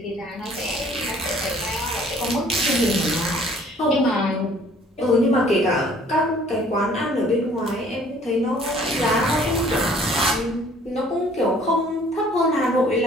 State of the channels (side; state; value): both; normal; correlation 0.56